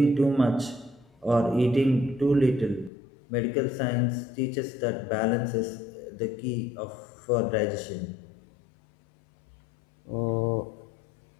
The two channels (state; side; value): drops out; right; at 2.9 s